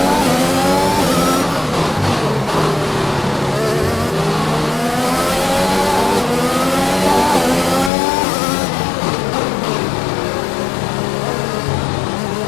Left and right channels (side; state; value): right; drops out; at 7.9 s